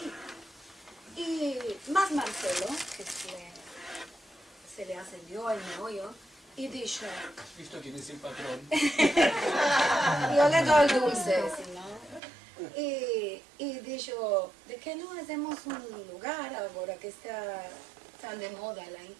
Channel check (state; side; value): drops out; left; at 12.2 s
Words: Y más Marcelo, que se le ascendió el meollo, y dijo, ¿Has visto quién es el patrón? yo le doy el dulce, si no. Y dijo, ¿de qué no hacemos un lugar ahora que está tan de moda la